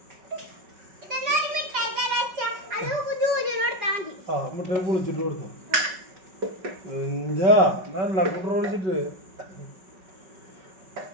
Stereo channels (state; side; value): late; left; 5.3 ms